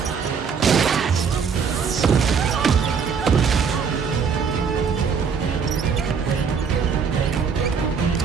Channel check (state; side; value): quieter; left; 6.2 dB